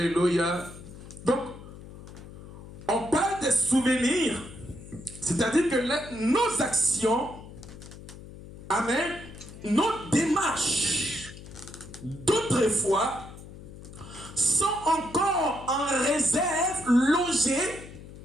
Donc, on parle des souvenirs, c'est-à-dire que nos actions, amen, nos démarches d'autrefois sont encore en réserve, logées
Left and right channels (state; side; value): noise; left; hum, 16 dB below the sound